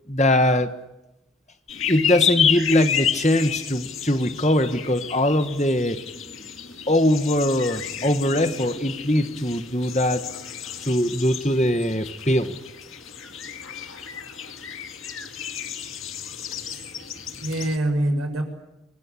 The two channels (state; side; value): normal; both; correlation 0.62